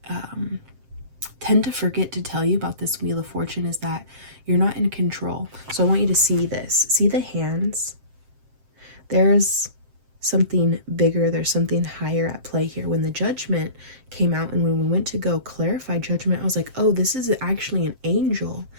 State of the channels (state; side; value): late; left; 7.6 ms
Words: tend to forget to tell you about this Wheel of Fortune is that you're not in control. So I want you to see this. See the hands? There's something bigger. There's something higher at play here. When the Judgment came out and when we went to go clarify Judgment, I was like, oh, this is actually an angel.